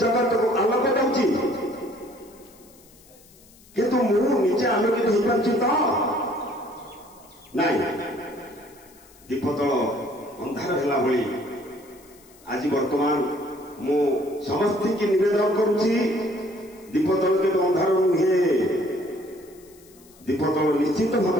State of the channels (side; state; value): left; noise; hiss, 26 dB below the sound